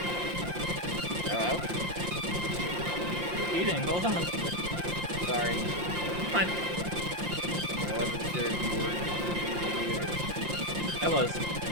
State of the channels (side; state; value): left; late; 5.7 ms